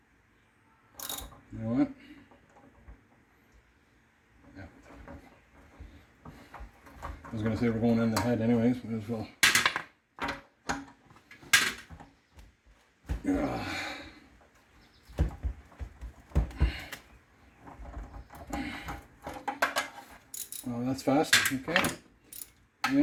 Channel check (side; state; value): both; identical; correlation 1.00